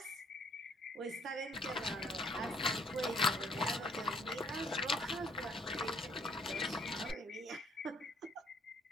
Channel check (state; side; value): normal; both; correlation 0.63